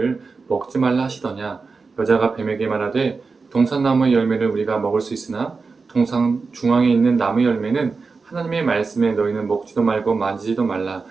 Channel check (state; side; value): quieter; left; 4.5 dB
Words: 먹지 말라 하시더냐. 여자가 뱀에게 말하되 동산 나무의 열매를 우리가 먹을 수 있으나 동산 중앙에 있는 나무의 열매는 하나님의 말씀에 너희는 먹지도 말고 만지지도 말라.